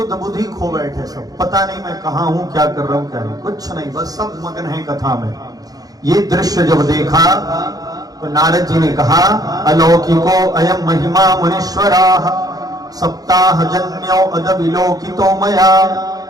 बुद्धि खो बैठे। सब पता नहीं मैं कहां हूं, क्या कर रहा हूं, क्या नहीं, कुछ नहीं, बस सब मगन है कथा में। ये दृश्य जब देखा तो नारद जी ने कहा, अलौकिको अयम महिमा मुनीश्वराः सप्ताह जन्यो अदविलोकितो मया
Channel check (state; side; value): late; left; 0.18 ms